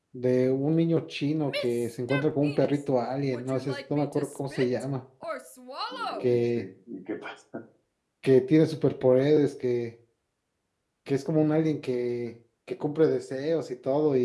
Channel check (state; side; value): identical; both; correlation 1.00